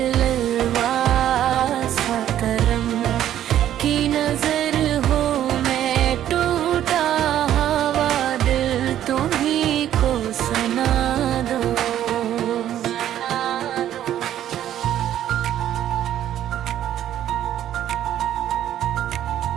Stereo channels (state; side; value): quieter; left; 11.5 dB